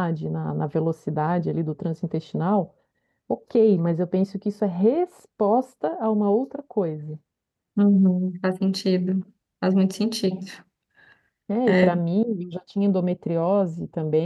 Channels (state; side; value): identical; both; correlation 1.00